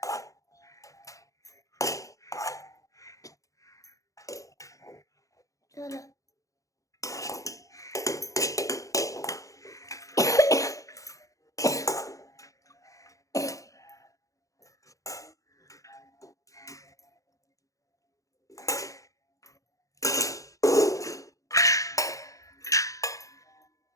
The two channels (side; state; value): right; late; 0.16 ms